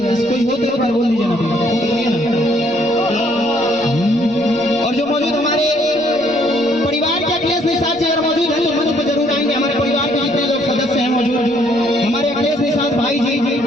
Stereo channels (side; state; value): left; noise; rumble, 28 dB below the sound